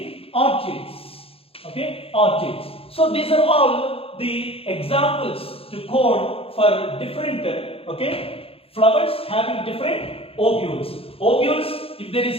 orchids. Okay, orchids. So these are all the examples to quote for different flowers having different ovules. Ovules, if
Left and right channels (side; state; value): right; late; 0.27 ms